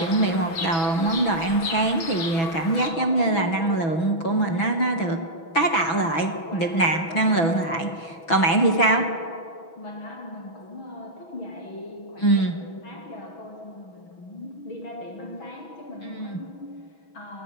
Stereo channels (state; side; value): late; right; 6.1 ms